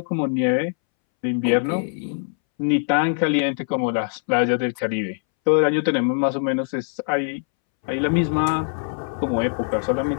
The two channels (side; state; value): right; silent; 63 dB below the other